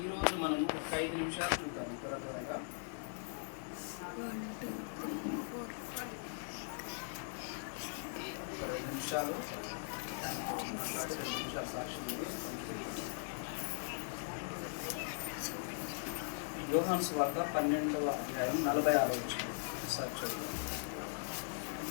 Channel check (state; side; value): silent; right; digital silence